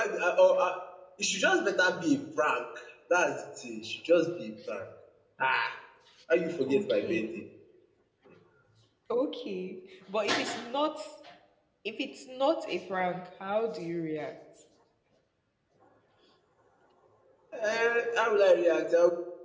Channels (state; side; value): identical; both; correlation 1.00